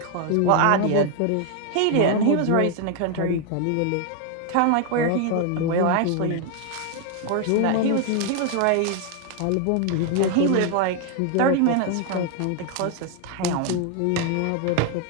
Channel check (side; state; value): both; different; correlation 0.00